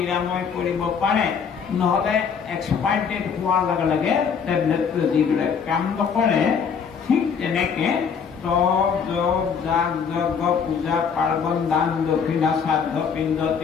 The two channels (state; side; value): quieter; right; 6.5 dB